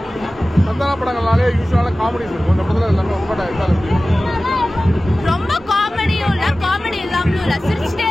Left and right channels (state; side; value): normal; both; correlation 0.96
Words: சந்தான படங்கள்னாலே யூசுவலா காமெடிஸ் இருக்கும். இந்த படத்துல எல்லாமே ரொம்ப டைப்பா இருக்கு. ரொம்ப காமெடியும் இல்ல, காமெடி இல்லாமலும் இல்ல, சிரிச்சிட்டே